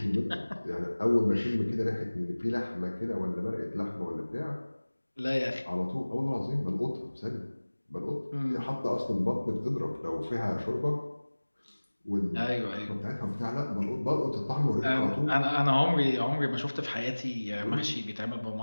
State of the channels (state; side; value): inverted; both; correlation -1.00